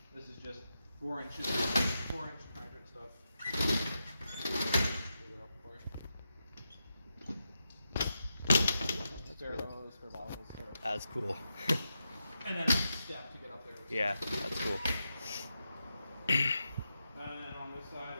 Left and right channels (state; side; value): inverted; both; correlation -0.87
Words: This is just 4 inches, 4-inch hydrant stuff. That's cool. And then a step to get up there. Yeah, that's cool. And on this side